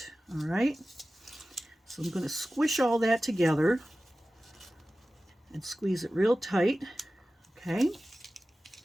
All right, so I'm going to squish all that together and squeeze it real tight. Okay.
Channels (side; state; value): both; normal; correlation 0.96